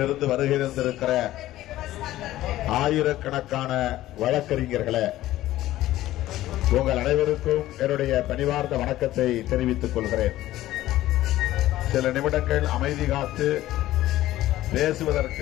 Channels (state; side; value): quieter; right; 15.0 dB